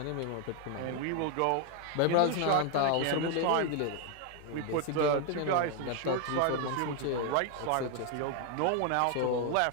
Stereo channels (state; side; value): different; both; correlation 0.00